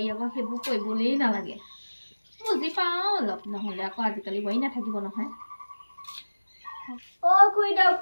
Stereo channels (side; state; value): both; inverted; correlation -1.00